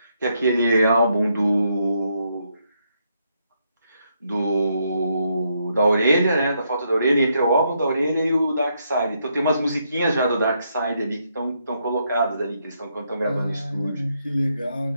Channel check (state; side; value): inverted; both; correlation -0.77